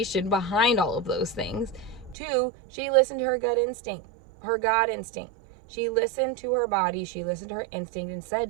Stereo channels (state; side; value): drops out; left; at 2.1 s